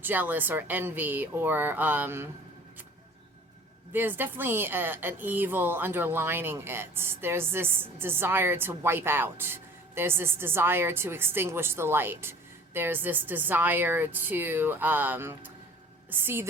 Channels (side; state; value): both; normal; correlation 0.48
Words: jealous or envy or, there's definitely an evil underlining it. There's this desire to wipe out. There's this desire to extinguish the light. There's this desire to see